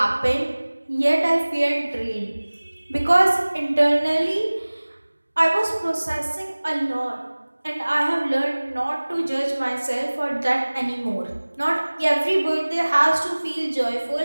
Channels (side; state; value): both; inverted; correlation -1.00